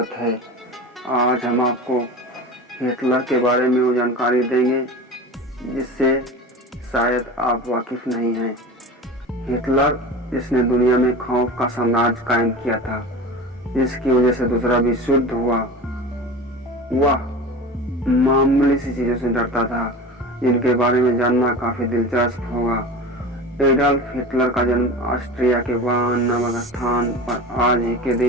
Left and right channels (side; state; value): both; normal; correlation 0.32